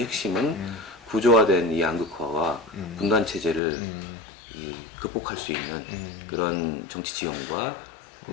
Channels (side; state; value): right; drops out; at 3.6 s